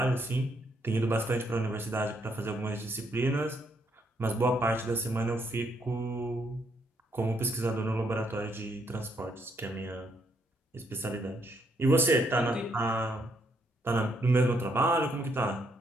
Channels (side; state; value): both; normal; correlation 0.74